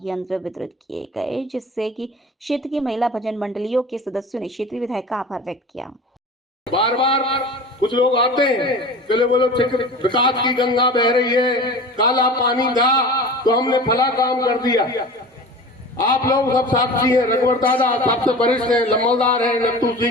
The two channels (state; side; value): normal; both; correlation 0.36